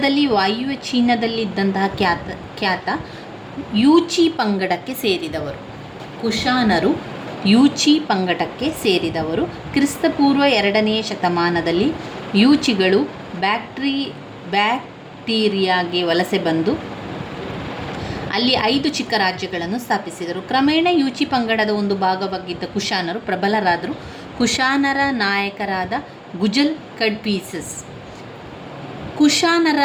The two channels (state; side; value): identical; both; correlation 1.00